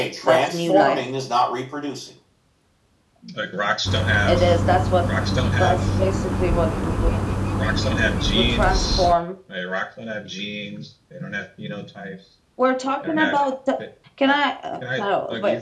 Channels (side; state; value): both; identical; correlation 1.00